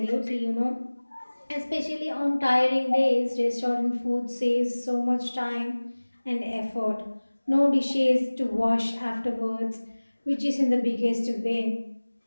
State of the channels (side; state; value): both; inverted; correlation -1.00